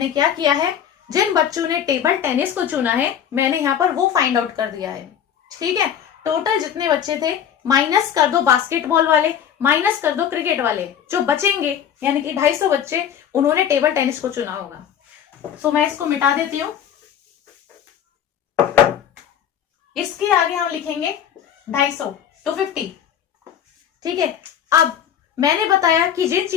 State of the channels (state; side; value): quieter; right; 9.0 dB